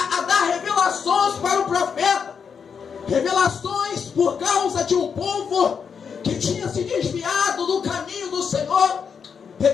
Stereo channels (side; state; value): right; quieter; 6.6 dB